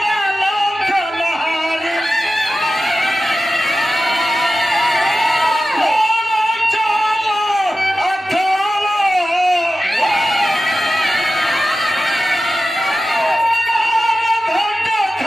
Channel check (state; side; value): normal; both; correlation 0.94